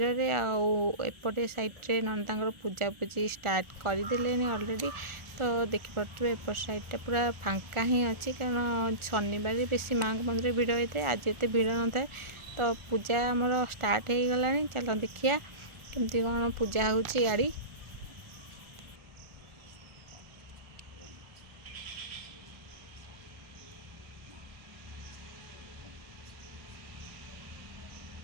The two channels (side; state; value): left; late; 1.4 ms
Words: रे आउपटे साइड्रे नंदा पूजा पूजी स्टार्ट करदे ऑलरेडी तो देखिपे एपट साइडटा पूरा फांका ही अच्छी कारण शनिवार बेसी माँ को मंदिर भिड़ होता है आज एत भिड़ न था तो पूजा आमर स्टार्ट हो गला चलो देखिया केमती कौन पूजा होची गाड़ी